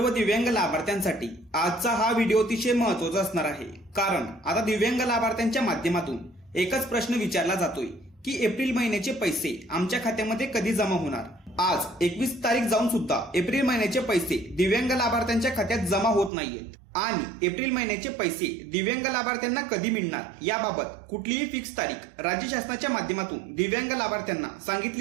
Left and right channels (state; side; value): drops out; left; at 16.3 s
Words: दिव्यांग लाभार्थ्यांसाठी आजचा हा व्हिडिओ अतिशय महत्त्वाचा असणार आहे। कारण आता दिव्यांग लाभार्थ्यांच्या माध्यमातून एकच प्रश्न विचारला जातोय की एप्रिल महिन्याचे पैसे आमच्या खात्यामध्ये कधी जमा होणार। आज 21 तारीख जाऊन सुद्धा एप्रिल महिन्याचे पैसे दिव्यांग लाभार्थ्यांच्या खात्यात जमा होत नाहीयेत आणि एप्रिल महिन्याचे पैसे दिव्यांग लाभार्थ्यांना कधी मिळणार याबाबत कुठलीही फिक्स तारीख राज्य शासनाच्या माध्यमातून दिव्यांग लाभार्थ्यांना